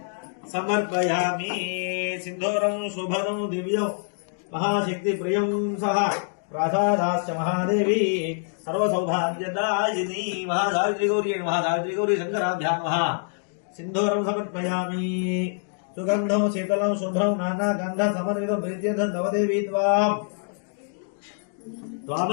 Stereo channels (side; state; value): right; silent; digital silence